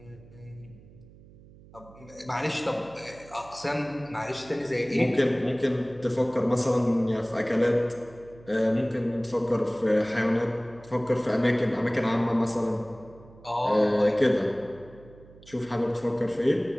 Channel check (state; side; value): noise; right; hum, 22 dB below the sound